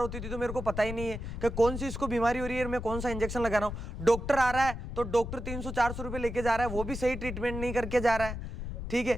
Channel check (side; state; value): left; noise; rumble, 7 dB below the sound